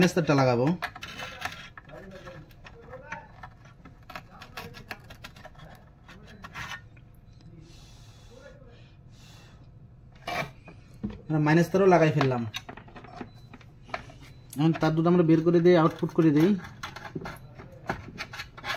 তারটা লাগাবো। মাইনাস তারও লাগাই ফেললাম। এখন তার দুটো আমরা বের করে দিই, আউটপুট করে দিই।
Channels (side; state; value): both; identical; correlation 1.00